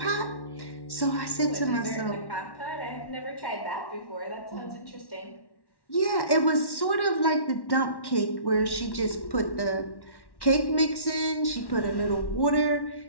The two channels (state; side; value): late; right; 1.1 ms